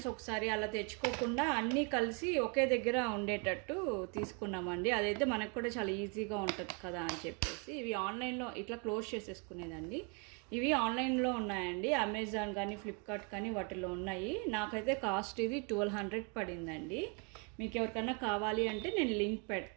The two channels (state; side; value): quieter; left; 34.5 dB